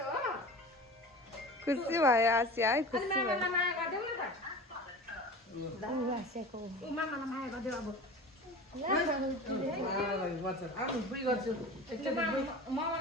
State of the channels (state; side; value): normal; both; correlation 0.35